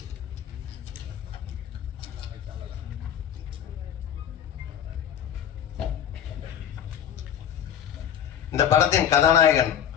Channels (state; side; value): quieter; right; 9.5 dB